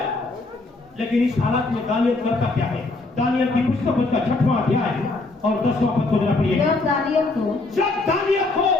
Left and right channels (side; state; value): right; quieter; 3.2 dB